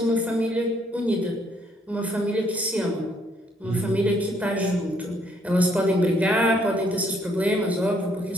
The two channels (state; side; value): normal; both; correlation 0.68